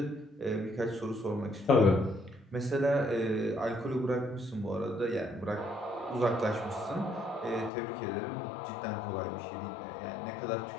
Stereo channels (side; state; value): right; drops out; at 7.7 s